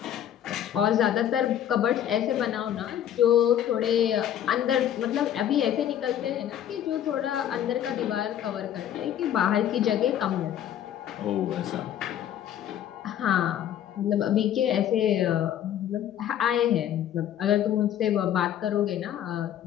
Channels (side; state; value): right; quieter; 10.6 dB